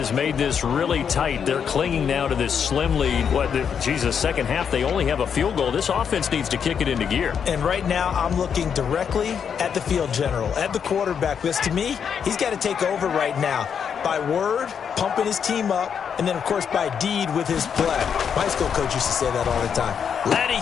made this really tight. They're clinging now to this slim lead. Second half, they only have a field goal. This offense needs to kick it into gear. And right now, I'm looking directly at the field general, at the quarterback. Because to me, he's got to take over right now. By word, pumping his team up, and then, of course, by deed with his play. My high school coach used to say that all the time. Laddie,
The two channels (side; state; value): right; quieter; 7.3 dB